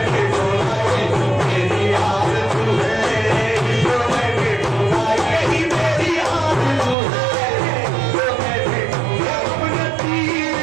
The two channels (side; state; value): left; drops out; at 7.0 s